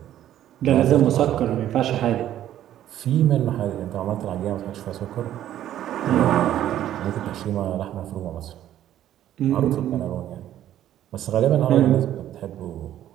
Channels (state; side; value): quieter; left; 11.9 dB